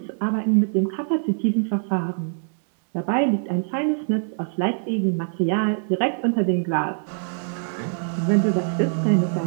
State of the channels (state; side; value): silent; left; digital silence